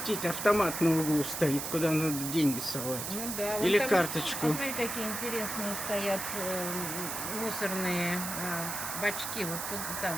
автомат на углу стоит, куда надо деньги совать. Ну да, Или там, карточку. Смотри, какие интересные стоят мусорные бачки. Вот тут, там,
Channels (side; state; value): right; noise; hiss, 4 dB below the sound